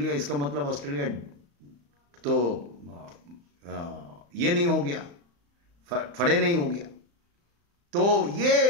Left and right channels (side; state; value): left; late; 35 ms